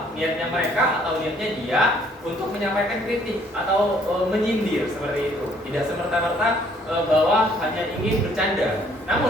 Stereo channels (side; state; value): both; normal; correlation 0.62